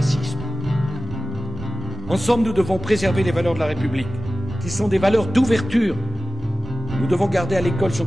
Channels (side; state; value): both; normal; correlation 0.95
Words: Ensemble, nous devons préserver les valeurs de la République, qui sont des valeurs d'ouverture. Nous devons garder à l'école son